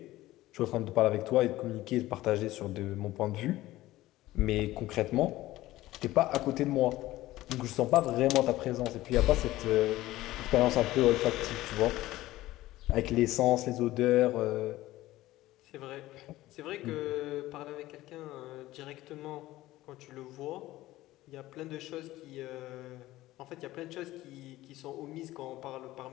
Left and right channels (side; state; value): right; quieter; 16.6 dB